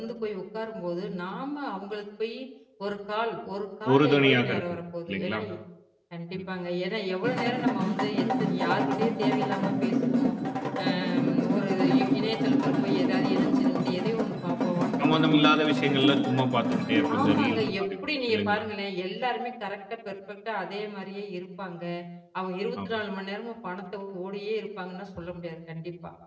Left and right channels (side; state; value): both; identical; correlation 1.00